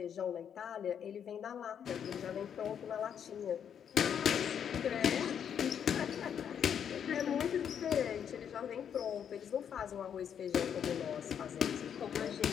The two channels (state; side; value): quieter; right; 8.3 dB